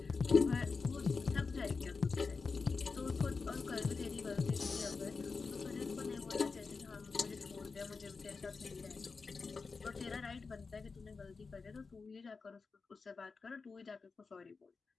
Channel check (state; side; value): quieter; right; 4.5 dB